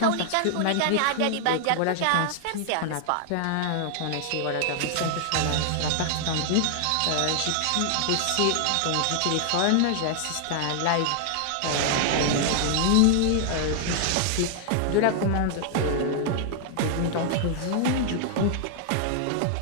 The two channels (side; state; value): both; different; correlation 0.00